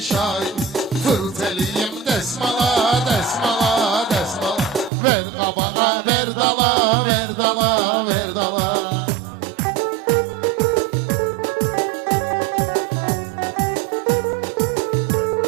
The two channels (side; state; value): left; drops out; at 4.9 s